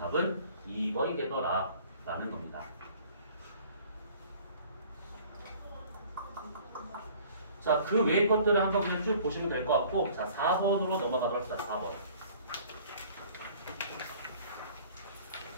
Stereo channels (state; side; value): inverted; both; correlation -0.52